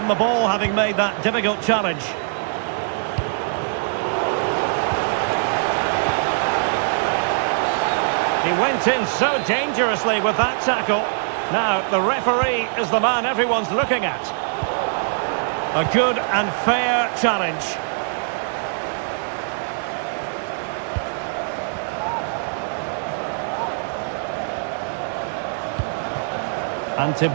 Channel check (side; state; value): left; silent; digital silence